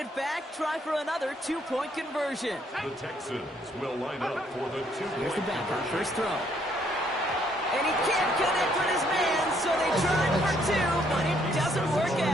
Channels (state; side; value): normal; both; correlation 0.68